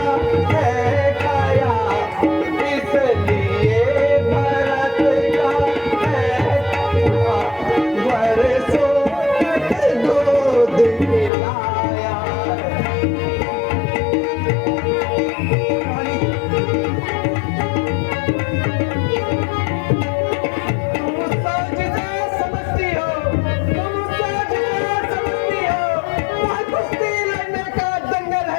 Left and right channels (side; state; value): right; drops out; at 11.3 s